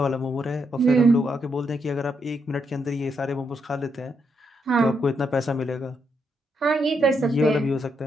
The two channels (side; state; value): both; normal; correlation 0.79